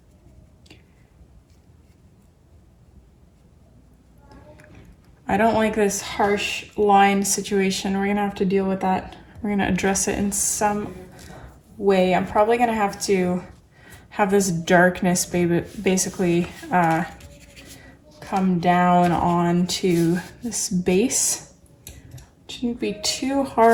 I don't like this harsh line situation. We're gonna have to deal with that. We're gonna address it in some way. I'm probably gonna have to have this darkness basically come down onto this base. Shouldn't be too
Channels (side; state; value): both; identical; correlation 1.00